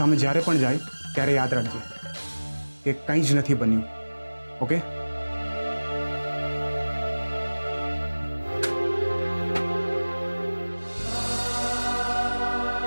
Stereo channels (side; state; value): both; inverted; correlation -1.00